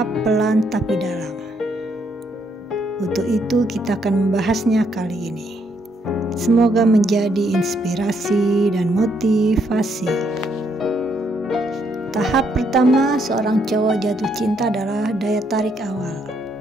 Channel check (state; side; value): normal; both; correlation 0.73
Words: pelan tapi dalam. Untuk itu kita akan membahasnya kali ini. Semoga menjadi inspirasi dan motivasi. Tahap pertama seorang cowok jatuh cinta adalah daya tarik awal.